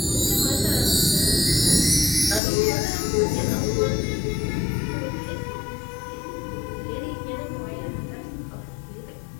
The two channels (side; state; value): right; drops out; at 2.4 s